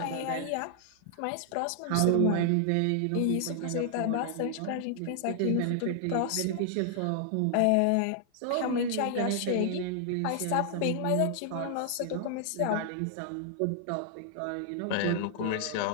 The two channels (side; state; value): both; different; correlation -0.01